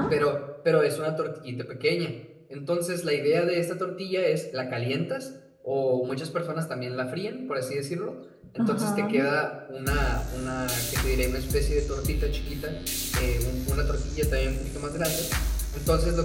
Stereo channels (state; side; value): identical; both; correlation 1.00